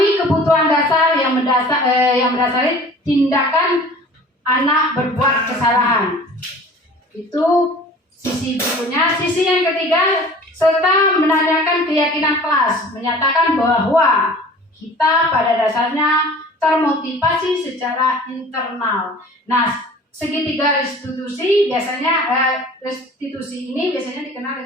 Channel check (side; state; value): both; normal; correlation 0.45